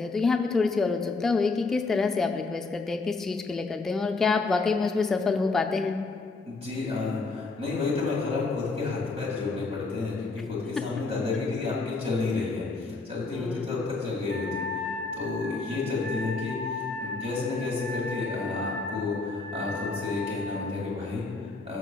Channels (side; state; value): right; quieter; 3.8 dB